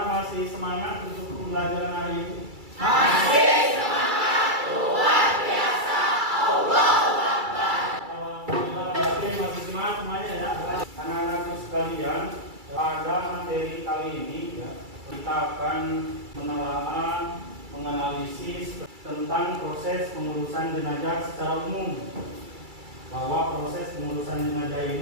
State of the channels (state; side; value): late; left; 2.3 ms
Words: masih semangat untuk pembelajaran hari ini? Masih semangat, luar biasa. Allahu Akbar. Alhamdulillah, berarti masih semangat semuanya ya. Anak-anakku sekalian, pada materi kali ini ya, kita kita akan menelaah, menganalisis tentang proses pengurusan jenazah secara umum. Bahwa proses pengurusan jenazah